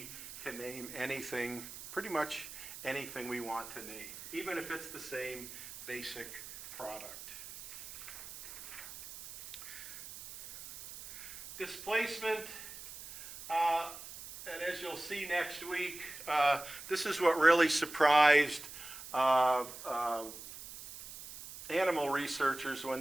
can name anything, pretty much anything we want to name, even if it's the same basic product. Displacement, and as you'll see next week, this is what really surprised animal researchers when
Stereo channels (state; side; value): noise; right; hiss, 13 dB below the sound